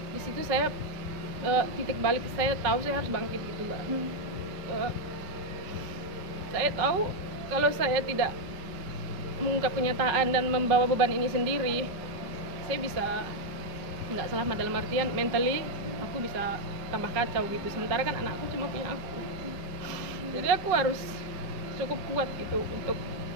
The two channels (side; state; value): left; late; 5.4 ms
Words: Di situ saya titik balik saya tahu saya harus bangkit gitu mbak. Saya tahu kalau saya tidak mengungkap kenyataan dan membawa beban ini sendiri, saya bisa nggak selamat, dalam artian mentally aku bisa tambah kacau gitu. Sementara kan anakku cuma punya aku, jadi aku harus cukup kuat gitu untuk